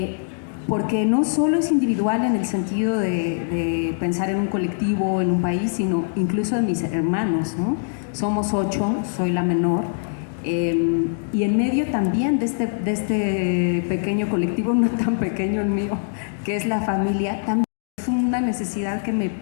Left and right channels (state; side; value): silent; right; digital silence